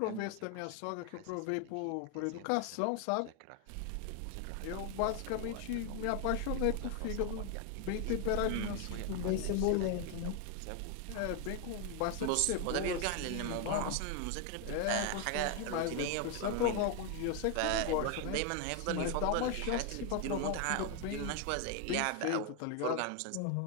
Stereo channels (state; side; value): different; both; correlation 0.01